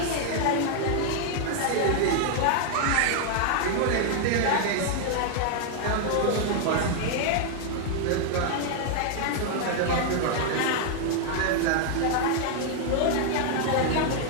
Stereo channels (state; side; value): different; both; correlation 0.00